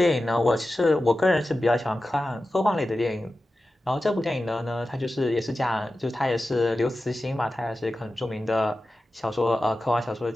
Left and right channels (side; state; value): both; normal; correlation 0.93